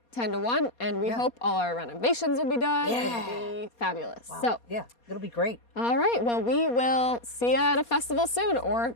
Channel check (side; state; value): right; late; 4.2 ms